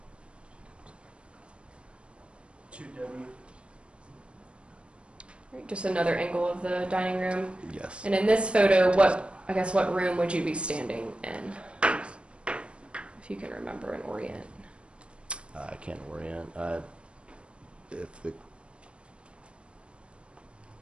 2W. All right, just another angle of the dining room. Yes. And in this photo, what room would you be standing in? If you can remember and orient. I can't orient. If the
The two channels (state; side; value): late; left; 0.058 ms